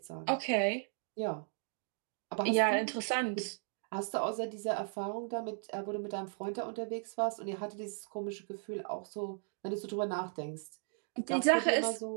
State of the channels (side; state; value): left; silent; 54 dB below the other